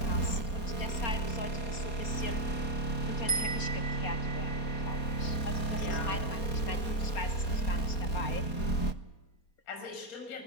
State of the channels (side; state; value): right; late; 4.3 ms